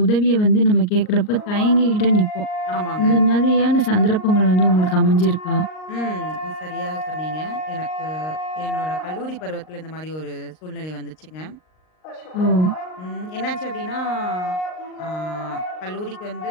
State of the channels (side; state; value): right; late; 38 ms